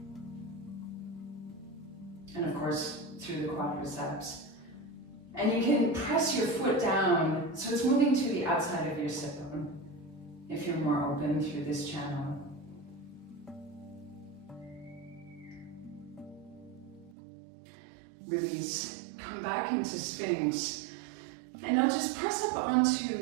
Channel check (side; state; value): left; drops out; at 17.2 s